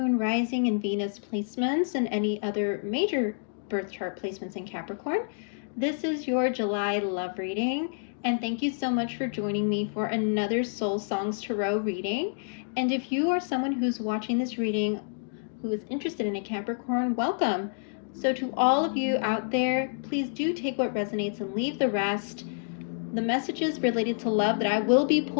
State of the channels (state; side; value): silent; right; digital silence